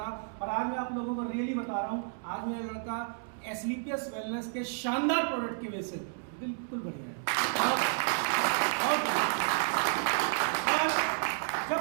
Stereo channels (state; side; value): silent; left; digital silence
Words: और आज मैं आप लोगों को रियली बता रहा हूँ, आज मेरा लड़का स्लीपियस वेलनेस के शानदार प्रोडक्ट की वजह से बिल्कुल बढ़िया है। जब